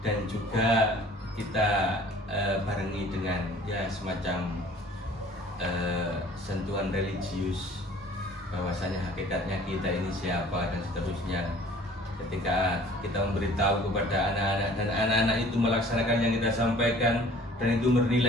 dan juga kita barengi dengan ya semacam sentuhan religius, bahwasanya hakikatnya kita ini siapa dan seterusnya. Ketika kita memberitahu kepada anak-anak dan anak-anak itu melaksanakan yang kita sampaikan dan itu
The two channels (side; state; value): both; normal; correlation 0.50